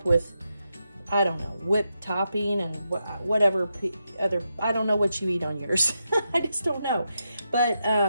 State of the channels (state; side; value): inverted; both; correlation -0.85